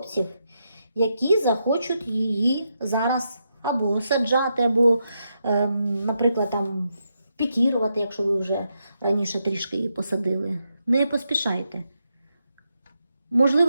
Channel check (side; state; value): both; inverted; correlation -0.83